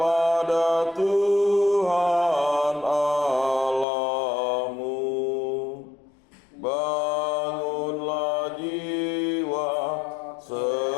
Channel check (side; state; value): right; drops out; at 3.9 s